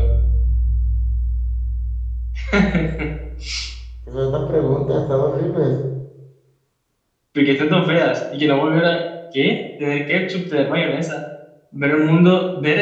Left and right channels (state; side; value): identical; both; correlation 1.00